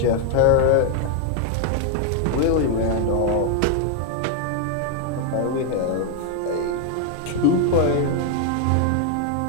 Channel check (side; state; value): both; different; correlation 0.00